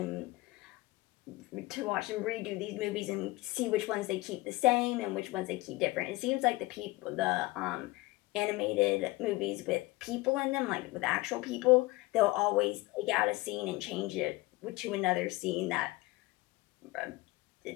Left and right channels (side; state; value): right; quieter; 21.1 dB